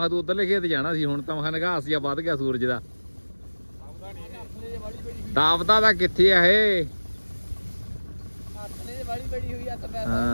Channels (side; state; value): both; inverted; correlation -1.00